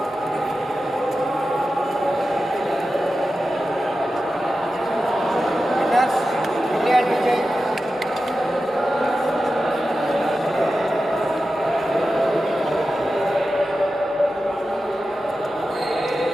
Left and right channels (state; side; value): normal; both; correlation 0.92